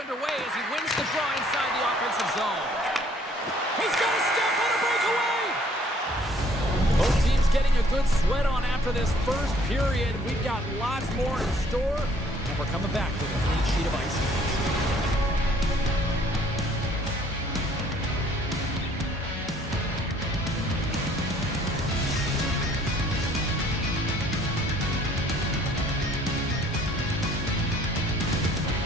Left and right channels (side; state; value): both; normal; correlation 0.60